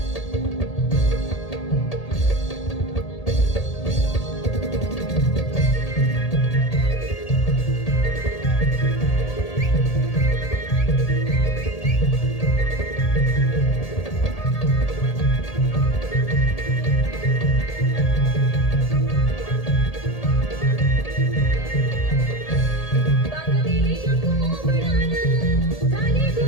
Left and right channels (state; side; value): late; right; 1.8 ms